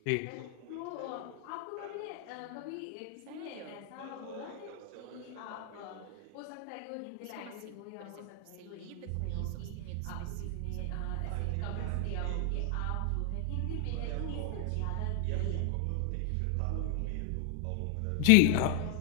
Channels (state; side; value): different; both; correlation 0.00